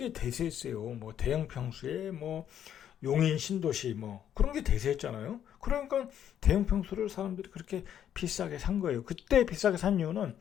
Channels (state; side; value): quieter; right; 9.9 dB